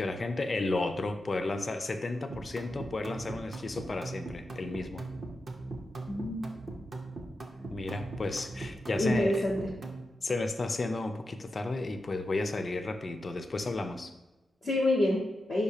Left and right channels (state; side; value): normal; both; correlation 0.89